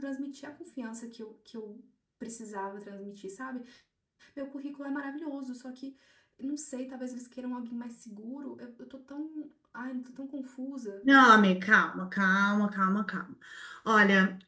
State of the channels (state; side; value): identical; both; correlation 1.00